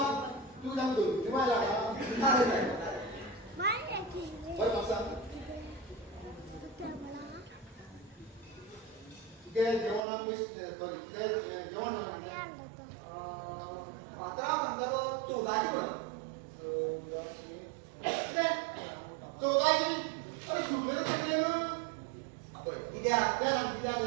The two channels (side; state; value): left; drops out; at 10.0 s